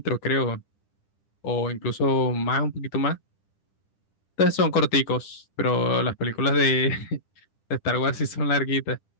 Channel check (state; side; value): late; right; 10 ms